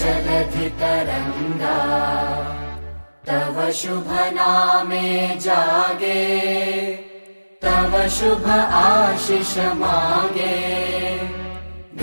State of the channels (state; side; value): inverted; both; correlation -1.00